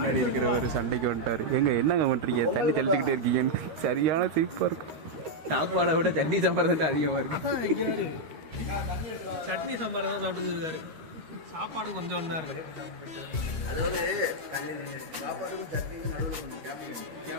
இருக்கிறவர் சண்டைக்கு வந்துட்டார். என்னங்க பண்ணுறீங்க, தண்ணி தெளிச்சுக்கிட்டே இருக்கீங்கன்னு. சரியான சிரிப்பாக இருக்கும். சாப்பாடை விட சட்னி சாம்பார் தான் அதிகமாக இருக்கும். சட்னி சாம்பார் தான் சாப்பிட்டு இருக்காரு. சாப்பாடு கொஞ்சம் ஒன்றா இருக்கு. அதாவது சாப்பாடுக்கும் சட்னிக்கும் நடுவில் கொஞ்சம் கேப்.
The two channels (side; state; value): left; late; 13 ms